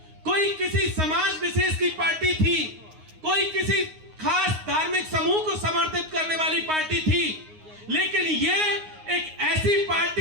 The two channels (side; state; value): left; late; 9.6 ms